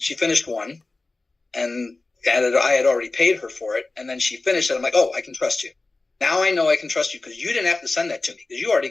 she finished one, and I had already paid her for it. And then she finished it. I'm like, oh, I can trust you. Now I know I can trust you because you didn't have to send that to me because you already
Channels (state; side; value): quieter; right; 3.4 dB